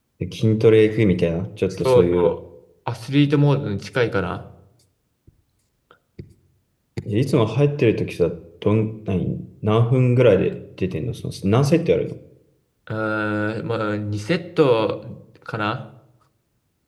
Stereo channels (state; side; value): identical; both; correlation 1.00